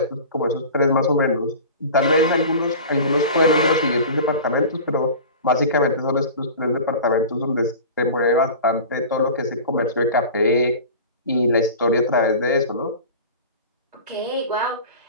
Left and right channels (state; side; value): inverted; both; correlation -0.36